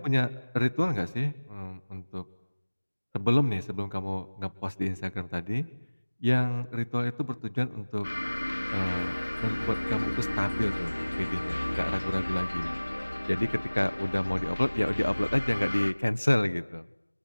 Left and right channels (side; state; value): both; inverted; correlation -1.00